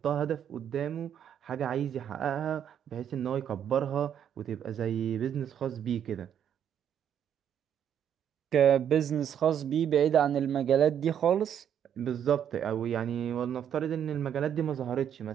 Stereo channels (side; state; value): left; quieter; 9.1 dB